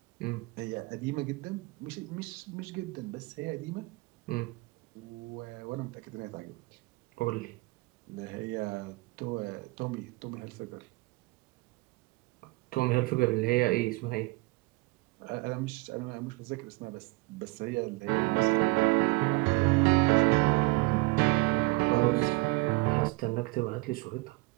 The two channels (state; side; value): quieter; left; 24.5 dB